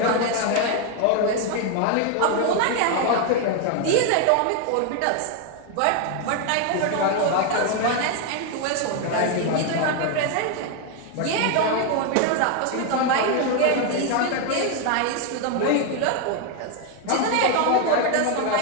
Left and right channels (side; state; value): both; different; correlation 0.01